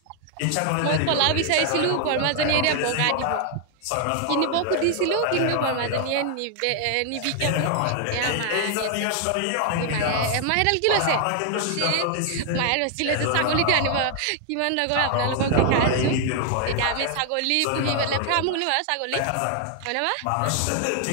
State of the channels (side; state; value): both; different; correlation 0.00